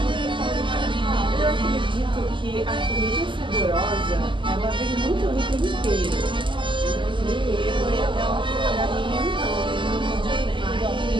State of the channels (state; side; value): late; left; 0.24 ms